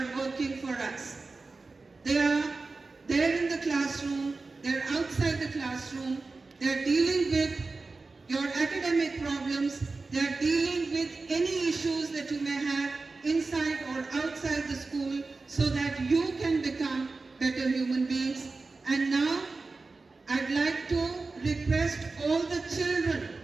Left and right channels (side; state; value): left; quieter; 3.8 dB